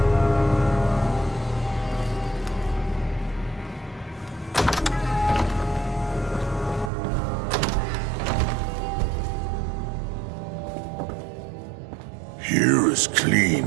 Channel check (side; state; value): left; drops out; at 6.9 s